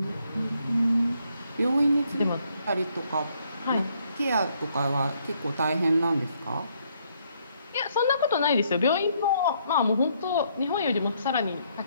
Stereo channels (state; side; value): inverted; both; correlation -0.71